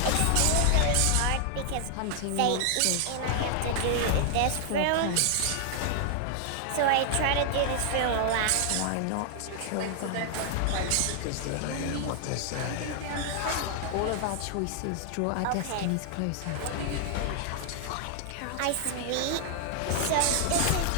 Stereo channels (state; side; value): different; both; correlation 0.00